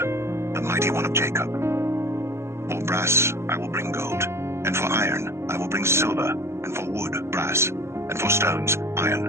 the mighty one of Jacob. For brass I will bring gold, and for iron I will bring silver, and for wood brass, and for stones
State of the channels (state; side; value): late; left; 0.13 ms